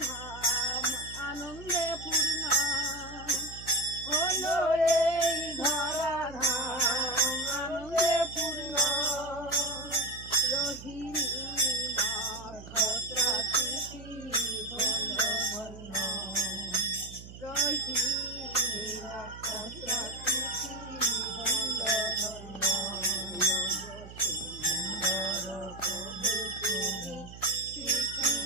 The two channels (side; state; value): right; noise; hum, 15 dB below the sound